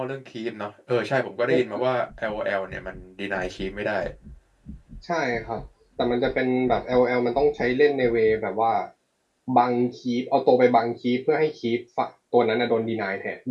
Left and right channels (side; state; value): both; identical; correlation 1.00